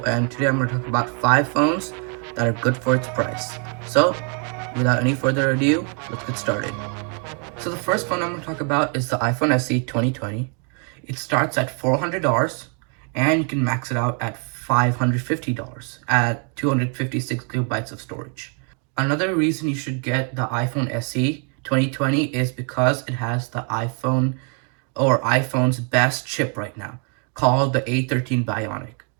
and today I'm going to talk about 5 phones that are good for its price. So, without any further ado, let's get started. So the first phone I'm going to talk about is the iPhone SE 2020. It starts at $400 and you can max it out at $550 at 256 gigabytes of storage. Another reason you should get the iPhone SE 2020 is because it has the iPhone's best chip right now, called the A13 Bionic,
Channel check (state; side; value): quieter; left; 39.4 dB